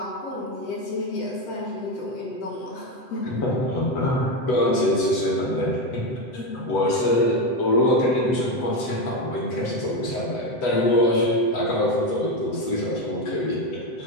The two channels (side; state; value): right; late; 8.1 ms